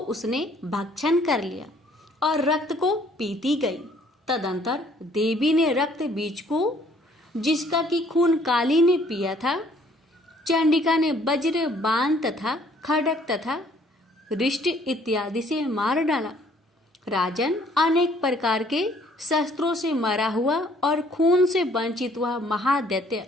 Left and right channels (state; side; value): normal; both; correlation 0.61